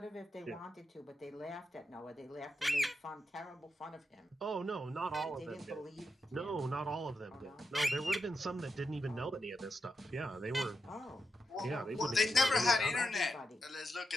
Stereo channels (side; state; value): both; normal; correlation 0.86